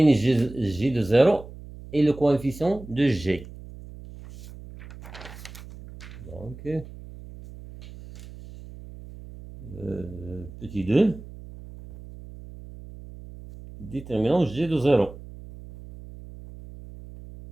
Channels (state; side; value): noise; right; hum, 16 dB below the sound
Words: g de 0 et le coefficient de g. Donc, petit 2. Déterminant g de 0.